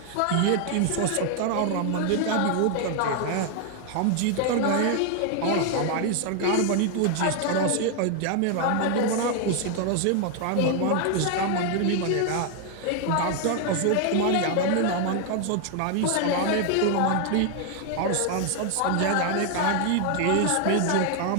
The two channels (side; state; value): both; different; correlation 0.00